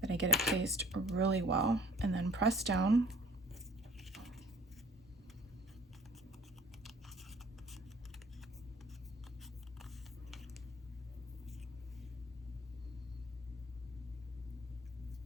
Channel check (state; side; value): normal; both; correlation 0.50